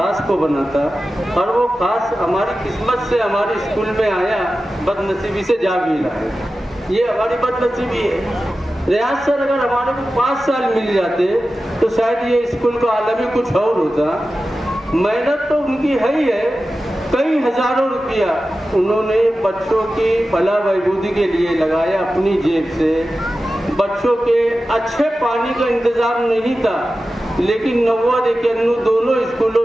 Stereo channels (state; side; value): normal; both; correlation 0.94